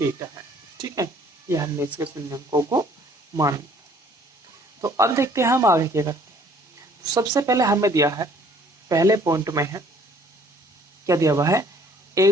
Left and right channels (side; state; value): both; normal; correlation 0.57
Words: है, ठीक है। ये हमने इसके शून्यंकों को मान लिया। तो अब देखते हैं हम आगे क्या करते हैं। तो सबसे पहले हमें दिया है, पहले पॉइंट में है क्या दिया हुआ है,